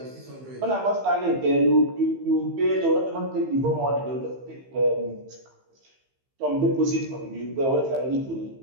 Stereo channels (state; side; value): late; left; 15 ms